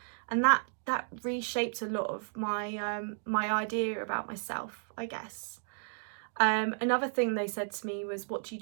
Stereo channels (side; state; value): left; silent; digital silence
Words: And that reshaped a lot of my my idea about myself, I guess. Another thing they said to me was, what do you